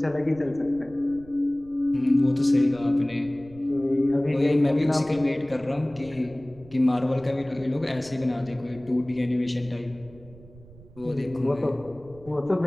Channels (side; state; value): right; noise; rumble, 21 dB below the sound